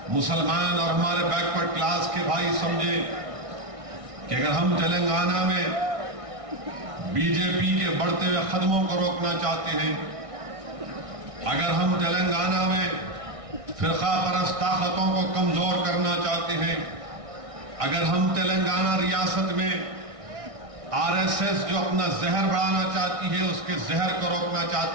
मुसलमान और हमारे बैकवर्ड क्लास के भाई समझे कि अगर हम तेलंगाना में बीजेपी के बढ़ते हुए कदमों को रोकना चाहते हैं, अगर हम तेलंगाना में फिरका परस्त ताकतों को कमजोर करना चाहते हैं, अगर हम तेलंगाना रियासत में आरएसएस जो अपना जहर बढ़ाना चाहती है उसके जहर को रोकना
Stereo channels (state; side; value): late; left; 1.6 ms